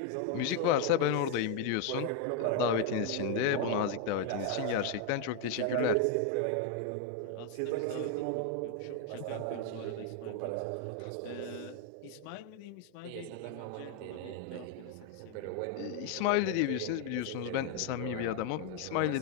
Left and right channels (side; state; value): both; different; correlation 0.01